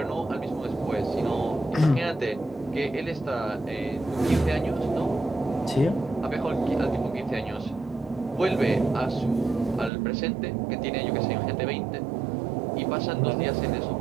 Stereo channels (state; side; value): drops out; left; at 9.9 s